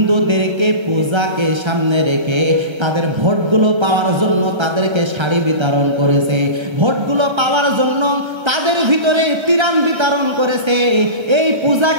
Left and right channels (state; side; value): late; left; 1.3 ms